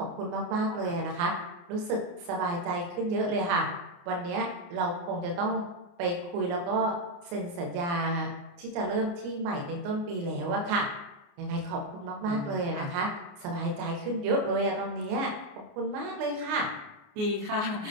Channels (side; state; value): left; late; 29 ms